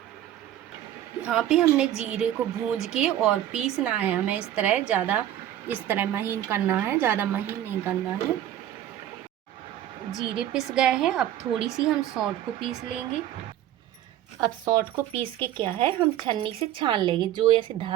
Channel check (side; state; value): left; quieter; 12.1 dB